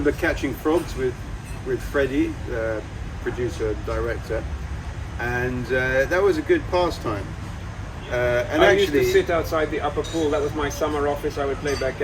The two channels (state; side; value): identical; both; correlation 1.00